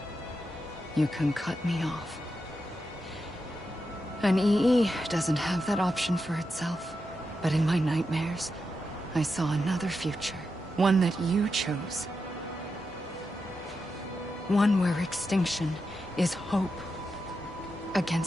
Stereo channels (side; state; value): both; normal; correlation 0.87